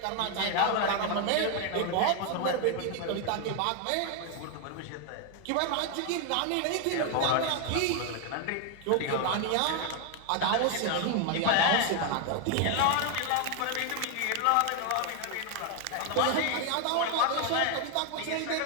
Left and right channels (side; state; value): both; different; correlation 0.01